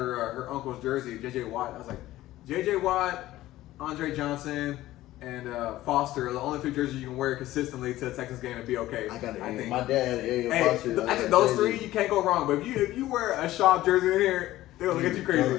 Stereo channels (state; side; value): quieter; right; 15.6 dB